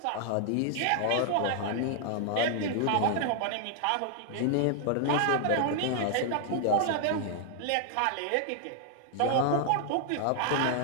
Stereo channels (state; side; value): different; both; correlation 0.00